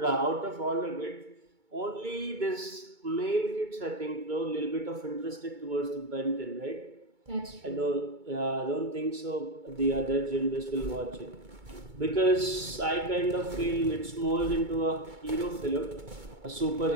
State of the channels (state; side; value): late; left; 2.2 ms